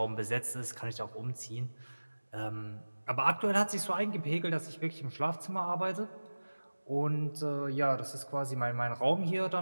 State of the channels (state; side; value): inverted; both; correlation -1.00